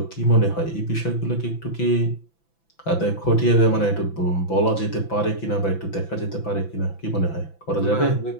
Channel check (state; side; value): late; right; 6.0 ms